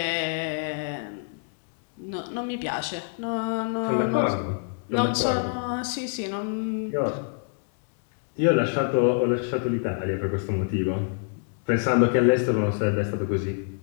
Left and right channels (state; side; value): silent; right; 59 dB below the other